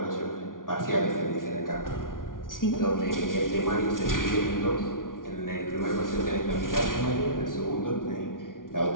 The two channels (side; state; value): right; late; 0.89 ms